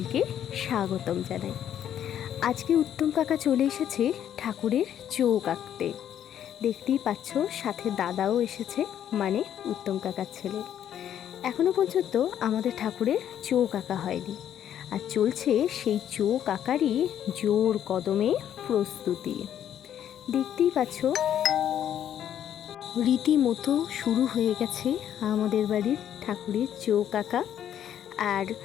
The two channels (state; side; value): quieter; right; 10.2 dB